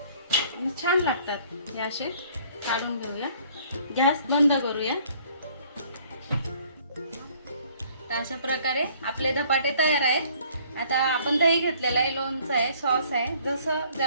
आणि छान लागतात हे असे. काढून घेऊया, गॅस बंद करूया. तर अशा प्रकारे आपले धपाटे तयार आहेत. आता आपण दही घेतलेलं आहे, लोणचं आहे, सॉस आहे, जसं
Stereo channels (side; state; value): both; inverted; correlation -0.58